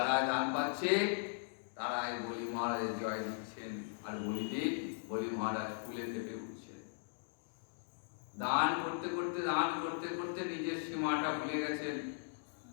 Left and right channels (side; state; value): right; silent; digital silence